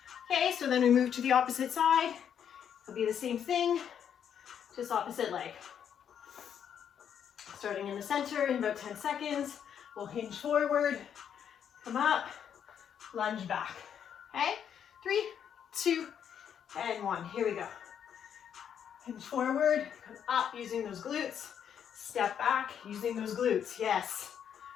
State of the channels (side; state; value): right; quieter; 8.6 dB